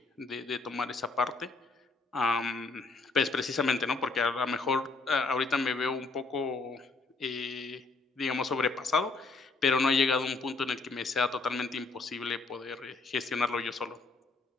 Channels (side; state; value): right; quieter; 3.8 dB